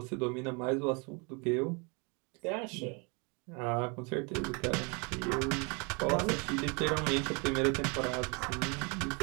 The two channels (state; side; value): quieter; left; 31.8 dB